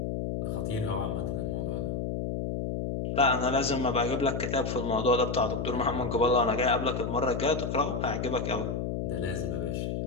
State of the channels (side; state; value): left; noise; hum, 2 dB below the sound